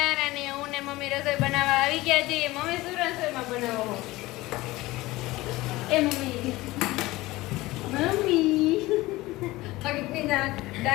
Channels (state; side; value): quieter; right; 19.2 dB